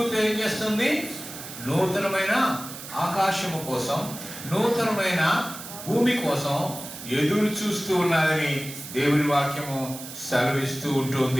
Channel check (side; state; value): right; noise; hiss, 12 dB below the sound